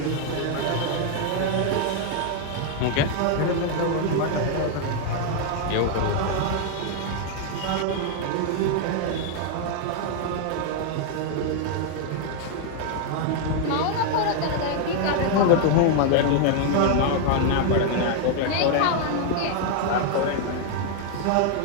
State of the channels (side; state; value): both; different; correlation 0.00